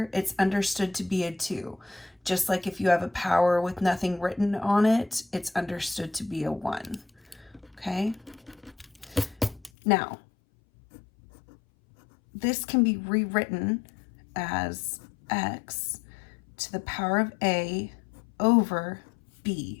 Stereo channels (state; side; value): drops out; right; at 9.7 s